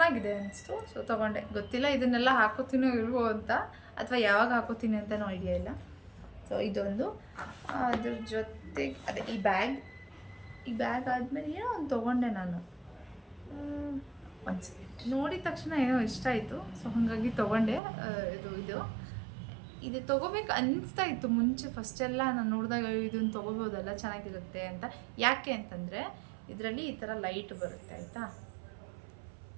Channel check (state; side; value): drops out; left; at 17.8 s